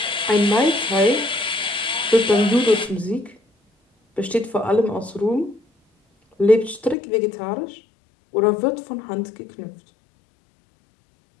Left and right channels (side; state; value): right; drops out; at 7.0 s